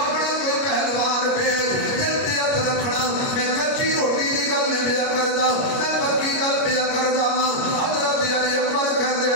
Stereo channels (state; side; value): late; right; 29 ms